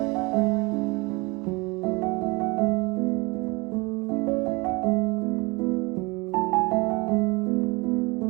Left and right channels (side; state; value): left; quieter; 26.0 dB